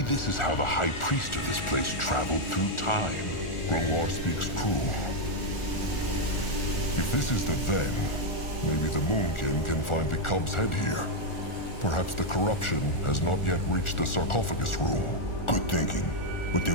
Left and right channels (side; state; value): right; late; 1.4 ms